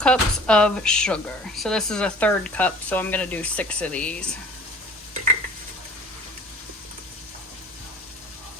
of sugar. So this is a 1/3 cup, so I'm going to do 6 of these.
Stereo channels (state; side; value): normal; both; correlation 0.48